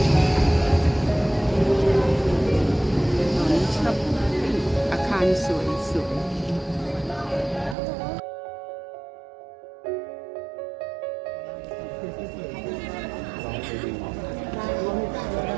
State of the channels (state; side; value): drops out; left; at 7.8 s